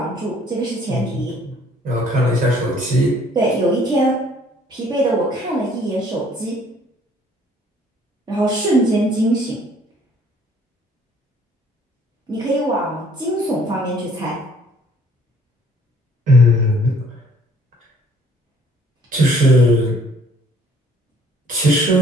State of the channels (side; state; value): both; normal; correlation 0.59